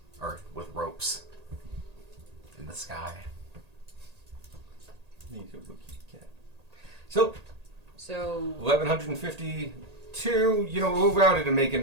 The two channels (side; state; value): left; late; 1.8 ms